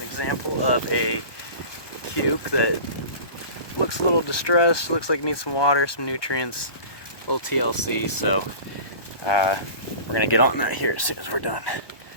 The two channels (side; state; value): right; late; 1.2 ms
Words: example of a cuke that looks a little distressed, looks like it needs some water, some nutrients, a little TLC, so we're going to get on that here as soon as we're done.